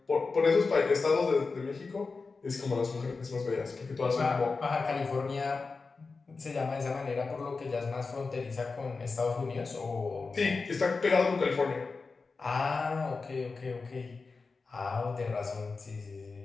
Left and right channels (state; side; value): quieter; right; 4.2 dB